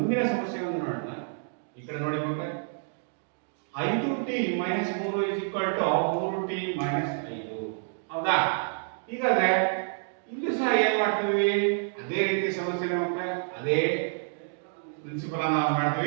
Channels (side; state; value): left; silent; digital silence